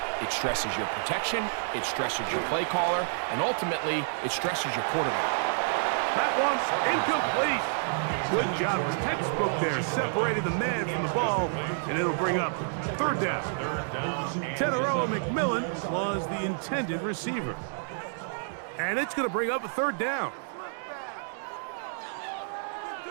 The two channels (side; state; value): left; silent; digital silence